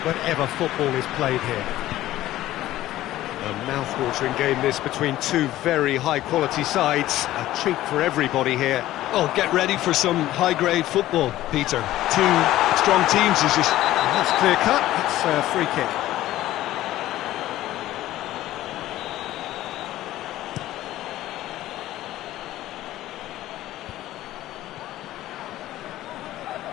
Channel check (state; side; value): quieter; right; 14.8 dB